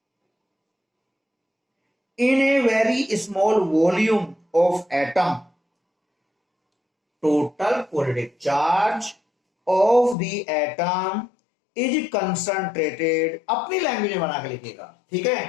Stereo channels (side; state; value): right; drops out; at 10.2 s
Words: in a very small volume of atom, total positive charge of the atom is concentrated, अपनी language में बना के लिखिएगा, ठीक